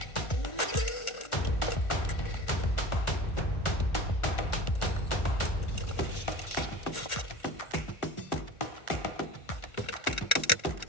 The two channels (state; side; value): late; right; 1.4 ms